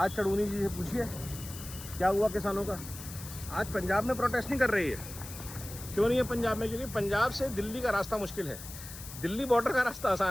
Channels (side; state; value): left; noise; hiss, 13 dB below the sound